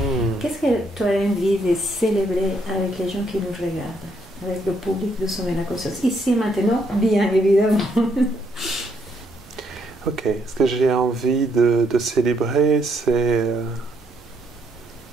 Qu'est-ce que tu as envie de célébrer avec les gens qui nous regardent, avec le public de Sommeil à la conscience, ici maintenant, bien évidemment. Ok, ce que j'ai envie de célébrer, c'est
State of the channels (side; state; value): both; normal; correlation 0.73